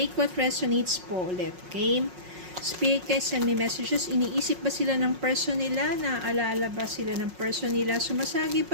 what resonates po ulit, okay? Spirit guys, send me messages. Iniisip ba sila ng person nila? Naalala ba sila ng person nila? Sumasagi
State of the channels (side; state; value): left; late; 5.5 ms